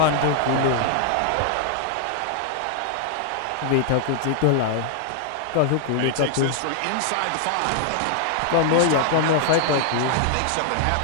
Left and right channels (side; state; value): both; different; correlation 0.00